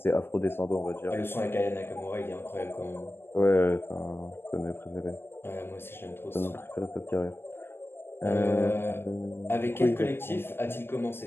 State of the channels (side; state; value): right; late; 0.11 ms